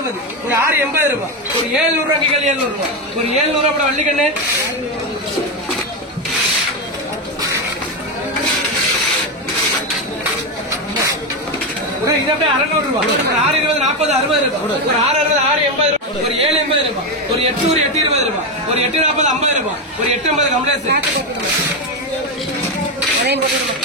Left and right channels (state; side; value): normal; both; correlation 0.10